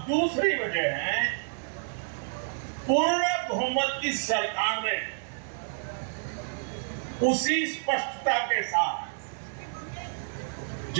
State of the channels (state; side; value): silent; left; digital silence